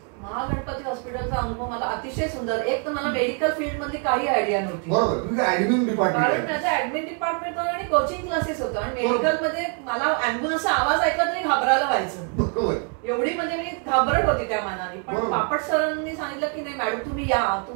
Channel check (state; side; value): quieter; left; 39.0 dB